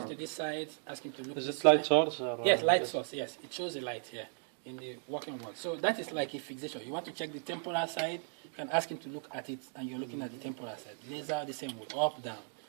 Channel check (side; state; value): left; silent; 54 dB below the other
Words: to this side, ask him to look. Is it light source? Or yes, light source. Yes, it shows the light here in the working world. So that is like a fixation. You want to check the temporal side, you can ask him to look at it, and you're looking at the temporal side. Laser the same way, up, down.